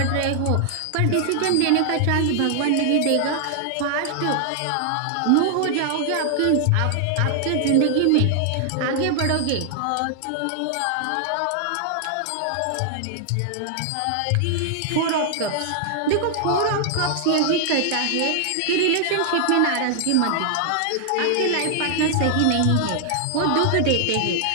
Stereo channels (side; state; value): both; different; correlation 0.00